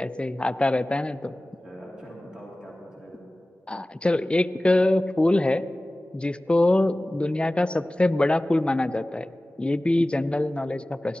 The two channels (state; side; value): normal; both; correlation 0.97